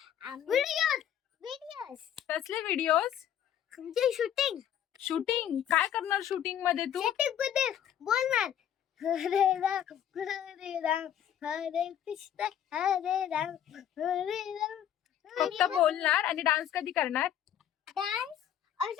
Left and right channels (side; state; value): right; quieter; 10.1 dB